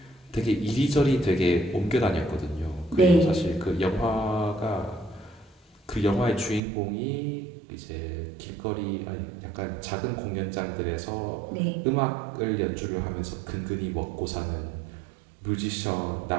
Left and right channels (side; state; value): left; drops out; at 6.6 s